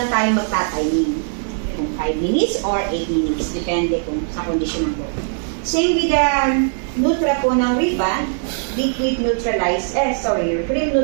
tayo magtatiming. Kung 5 minutes or 8 minutes. Depende kung sa condition ng buhok. Same with the Nutra po ng ribbon, liquid neutralizer, cream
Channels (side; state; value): left; silent; digital silence